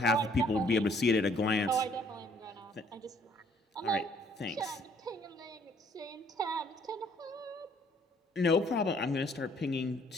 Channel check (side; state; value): both; normal; correlation 0.62